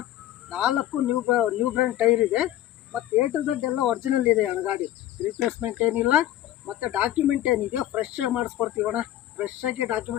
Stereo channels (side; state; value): right; quieter; 13.4 dB